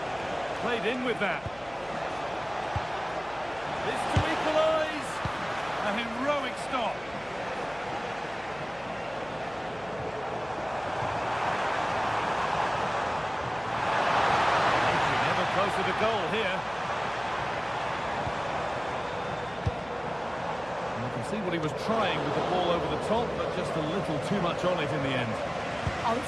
Played in with that. This to equalise. A heroic stop. Never closer to goal here. And you can see what he was trying with the ball over the top, but just a little too much on it in the end. Oh,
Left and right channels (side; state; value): left; noise; hum, 22 dB below the sound